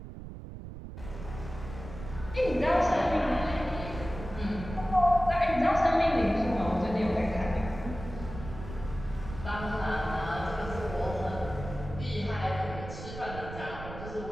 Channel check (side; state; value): right; noise; rumble, 11 dB below the sound